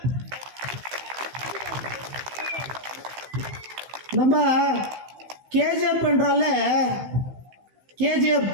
நம்ம கேஜிஎஃப் என்றால கேஜிஎஃப்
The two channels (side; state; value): left; late; 15 ms